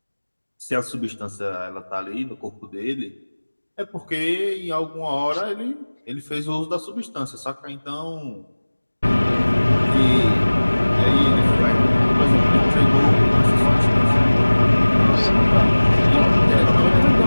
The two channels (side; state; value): both; inverted; correlation -1.00